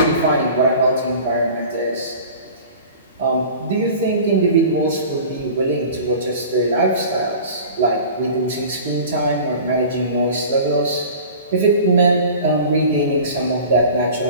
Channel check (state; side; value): inverted; both; correlation -0.40